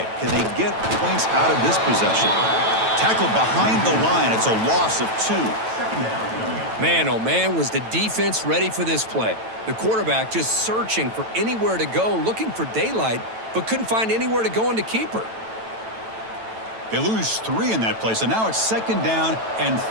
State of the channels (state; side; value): late; left; 9.0 ms